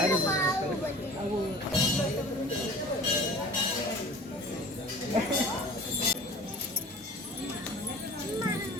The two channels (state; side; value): normal; both; correlation 0.42